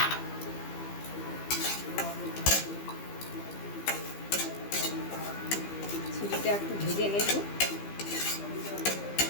সুজিটা একটু ভেজে নেব।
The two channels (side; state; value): right; late; 15 ms